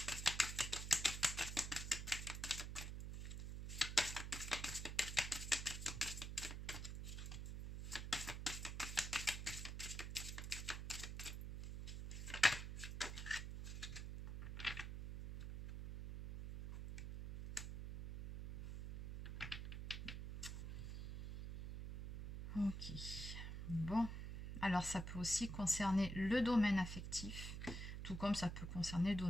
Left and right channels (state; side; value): noise; right; hum, 6 dB below the sound